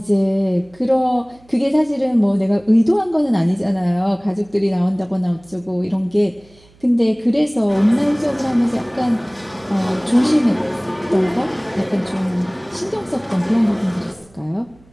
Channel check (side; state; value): right; noise; hum, 29 dB below the sound